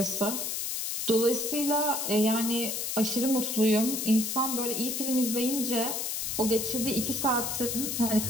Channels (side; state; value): left; noise; hiss, 2 dB below the sound